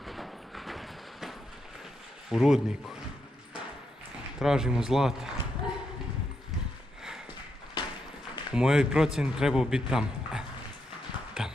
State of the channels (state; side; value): normal; both; correlation 0.82